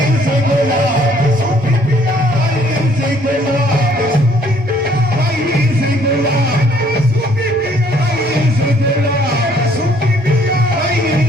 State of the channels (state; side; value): normal; both; correlation 0.62